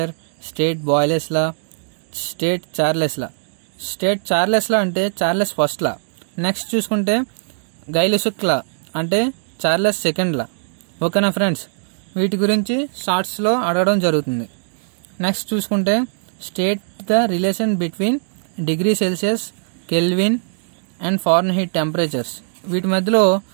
state Boyle's law, state Charles law. State Charles law అంటే చార్లెస్ ఫస్ట్ లా. నెక్స్ట్ చూసుకుంటే గైలెసుక్ లా అంటే చార్లెస్ సెకండ్ లా. ఓకేనా ఫ్రెండ్స్. వీటి గురించి షార్ట్స్లో అడగడం జరుగుతుంది. నెక్స్ట్ చూసుకుంటే state the relation between degree Celsius, kelvin and Fahrenheit temperatures. వీటి మధ్యలో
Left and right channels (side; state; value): left; silent; digital silence